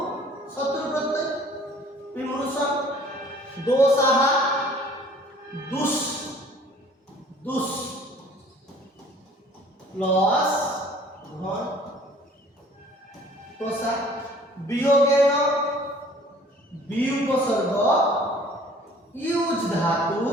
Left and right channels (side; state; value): both; normal; correlation 0.53